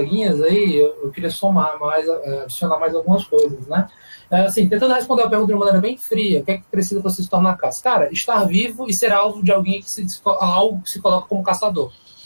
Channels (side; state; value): both; inverted; correlation -1.00